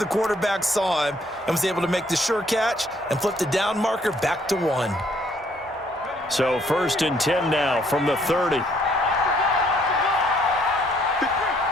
quarterback saw him, and was able to make the sure catch and flip the down marker back to 1. So 1st and 10 now from the 30.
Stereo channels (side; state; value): both; normal; correlation 0.66